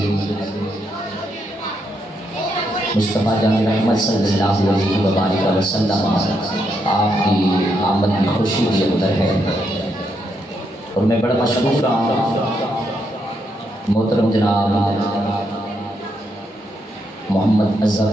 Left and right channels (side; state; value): both; normal; correlation 0.79